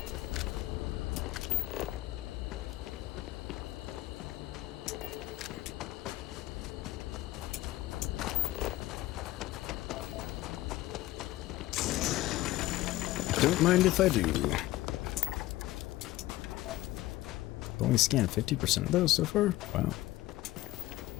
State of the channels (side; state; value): right; quieter; 16.8 dB